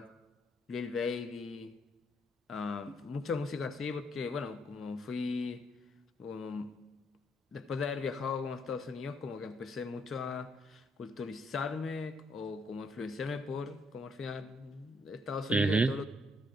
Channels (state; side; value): normal; both; correlation 0.72